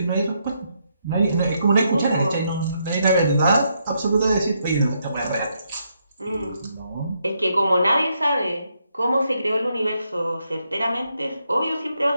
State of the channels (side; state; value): both; inverted; correlation -0.78